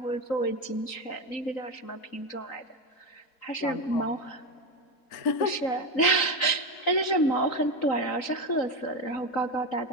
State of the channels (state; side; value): late; right; 3.9 ms